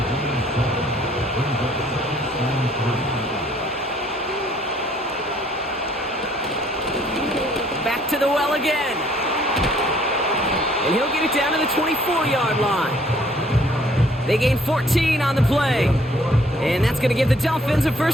Back to the well again. And he'll get it down to the 24-yard line. They gain 14 on the play. And that's going to give the Dolphins a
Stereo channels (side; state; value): both; normal; correlation 0.61